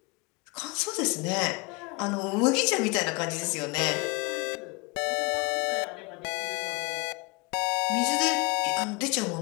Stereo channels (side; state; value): right; quieter; 28.2 dB